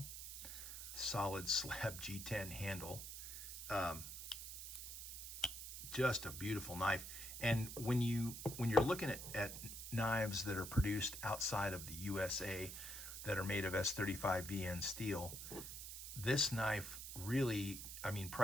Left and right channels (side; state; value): right; noise; hiss, 8 dB below the sound